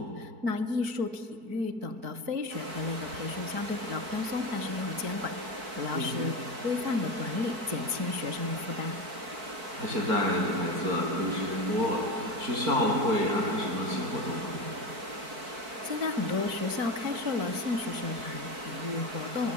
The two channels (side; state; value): left; late; 4.5 ms